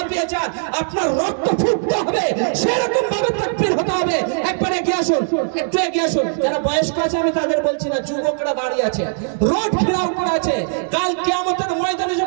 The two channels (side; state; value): left; silent; digital silence